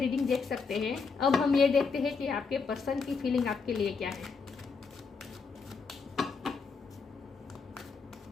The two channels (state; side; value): quieter; right; 5.0 dB